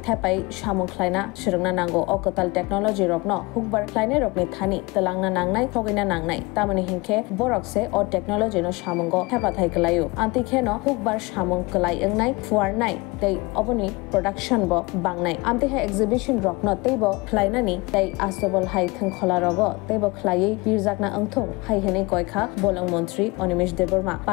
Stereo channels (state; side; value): quieter; right; 24.8 dB